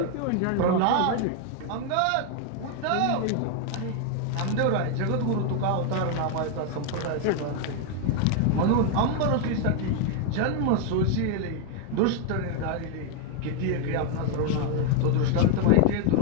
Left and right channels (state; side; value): different; both; correlation 0.01